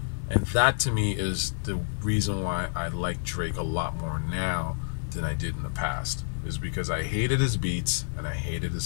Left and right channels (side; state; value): right; silent; 59 dB below the other